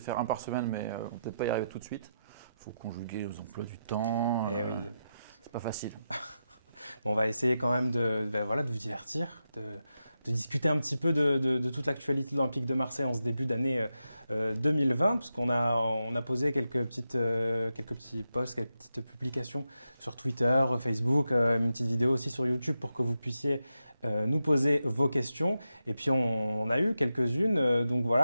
un par semaine, mais on ne peut peut-être pas y arriver tout de suite. Il faut conjuguer les emplois du temps. Eh oui. C'est pas facile. On va essayer quand même voilà, de vous divertir, de discuter un petit peu de toute l'actualité de l'Olympique de Marseille en ce début d'année 2020, parce qu'on a posé quelques petits posts, quelques petites publications sur Twitter, Facebook, une petite vidéo aussi sur YouTube pour que vous puissiez nous poser vos questions. Et puis on a eu quelques-unes, donc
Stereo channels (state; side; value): inverted; both; correlation -0.87